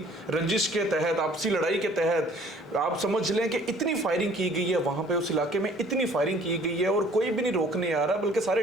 रंजिश के तहत, आपसी लड़ाई के तहत आप समझ लें कि इतनी फायरिंग की गई है वहां पे, उस इलाके में इतनी फायरिंग की गई है और कोई भी नहीं रोकने आ रहा, बल्कि सारे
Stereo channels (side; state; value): both; normal; correlation 0.55